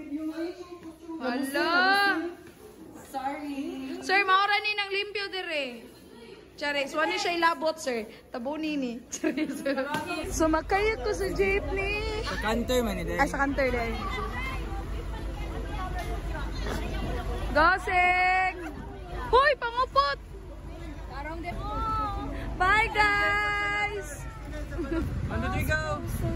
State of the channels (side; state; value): both; identical; correlation 1.00